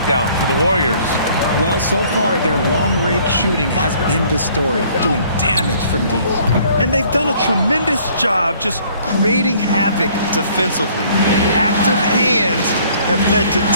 for the Warriors. Well, so far, their long-range shooting has been the story, doing damage from deep. And they've done a tremendous job just creating havoc defensively. Active hands have led to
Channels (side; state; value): both; inverted; correlation -0.58